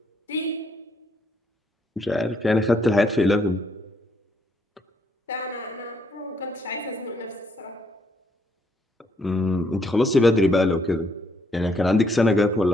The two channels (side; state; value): both; normal; correlation 0.71